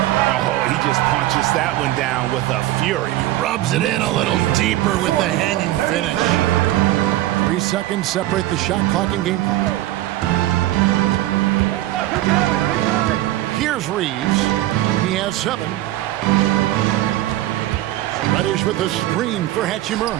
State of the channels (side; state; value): left; quieter; 15.3 dB